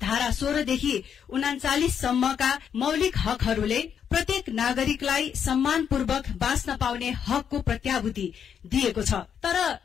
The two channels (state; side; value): quieter; right; 8.0 dB